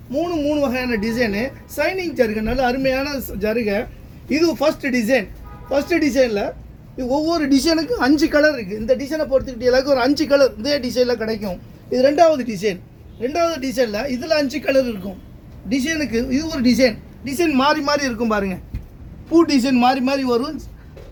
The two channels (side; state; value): both; identical; correlation 1.00